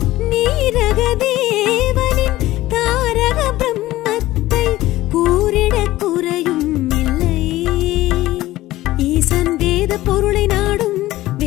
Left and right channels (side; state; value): right; quieter; 16.5 dB